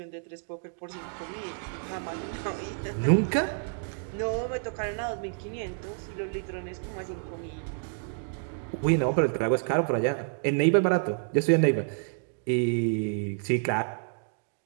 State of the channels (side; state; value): left; silent; 58 dB below the other